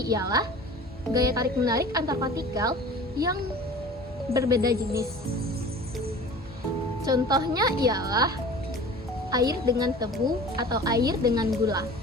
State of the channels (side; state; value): both; normal; correlation 0.41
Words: ialah gaya tarik-menarik antar partikel yang berbeda jenis. Contohnya ialah air dengan tebu atau air dengan gula.